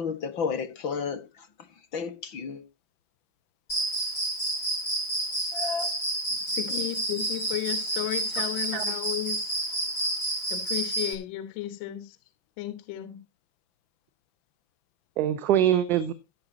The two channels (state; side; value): late; right; 5.9 ms